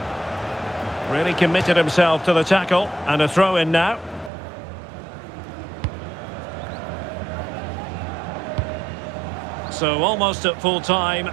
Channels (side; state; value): left; drops out; at 4.3 s